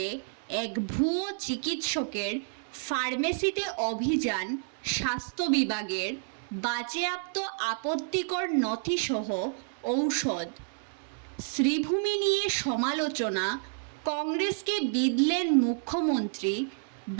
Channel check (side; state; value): left; silent; digital silence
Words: এক ভুয়ো চিকিৎসকের ফার্মেসিতে অভিযান স্বাস্থ্য বিভাগের। বাজেয়াপ্ত আপত্তিকর নথিসহ ঔষধ। শ্রীভূমি নিয়ে সমালোচনা, কংগ্রেসকে বিঁধলেন মুখ্যমন্ত্রী।